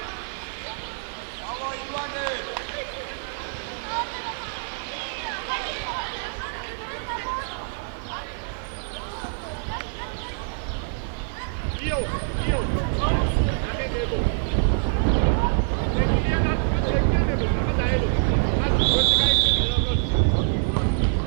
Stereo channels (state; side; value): silent; left; digital silence